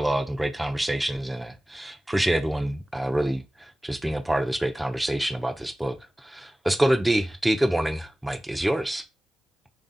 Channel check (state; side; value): normal; both; correlation 0.97